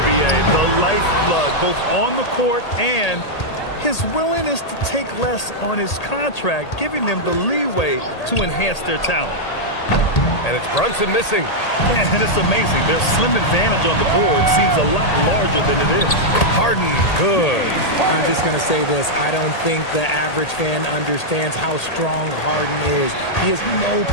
B.A., the lifeblood, both on the court and his willingness to take less on his contract, giving them the leeway to enhance their talent. And it's Brunson missing. And it's amazing. Their slim advantage on the board seems a lot larger than it is. Harden, good. I'm just going to say this. I don't think the average fan understands how strong Harden is. He has no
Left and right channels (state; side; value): late; right; 1.8 ms